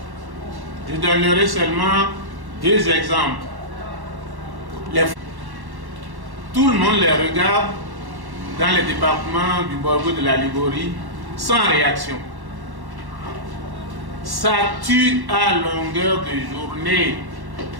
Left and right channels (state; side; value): late; left; 1.1 ms